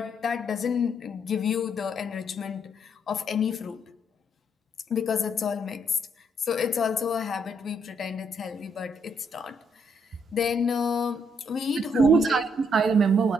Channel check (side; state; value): both; normal; correlation 0.72